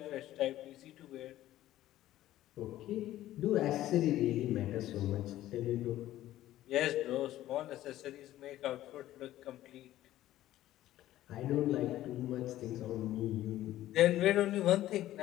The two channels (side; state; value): right; quieter; 14.2 dB